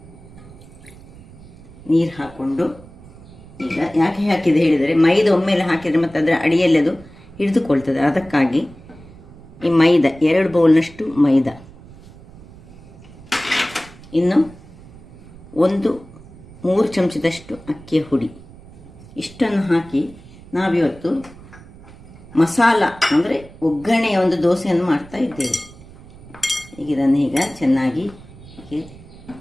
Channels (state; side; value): noise; right; rumble, 20 dB below the sound